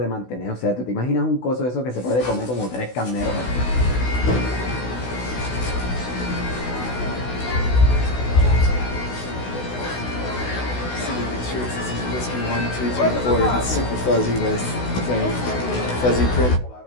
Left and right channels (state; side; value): late; right; 16 ms